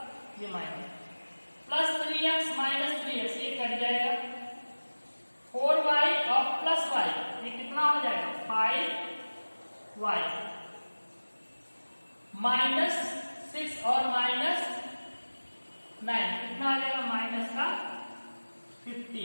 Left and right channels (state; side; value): inverted; both; correlation -1.00